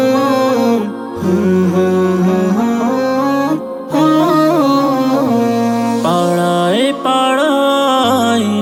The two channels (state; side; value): identical; both; correlation 1.00